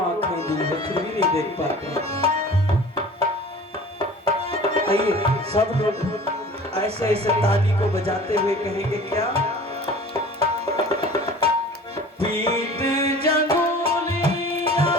दी है फिर भी नहीं देख पाते। आइए सब लोग ऐसे ऐसे ताली को बजाते हुए कहेंगे क्या? पीठ जंगुलिया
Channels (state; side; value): normal; both; correlation 0.43